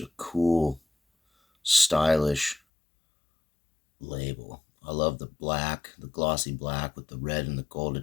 a cool, stylish label. I love the black, the glossy black with the red and the gold.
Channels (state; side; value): drops out; right; at 2.6 s